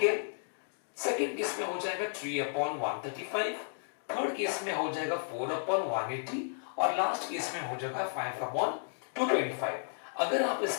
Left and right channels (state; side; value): silent; right; digital silence